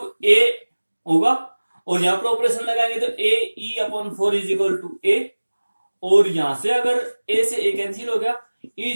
A होगा और यहां पर ऑपरेशन लगाएंगे तो A E upon 4 is equal to A, और यहां से अगर ए से ए कैंसिल हो गया ई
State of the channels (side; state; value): both; inverted; correlation -1.00